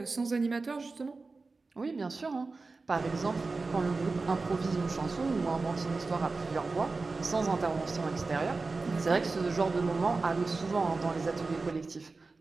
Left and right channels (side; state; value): left; quieter; 3.9 dB